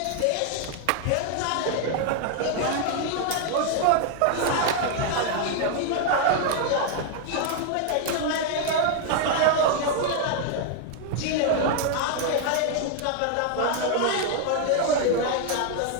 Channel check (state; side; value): different; both; correlation 0.00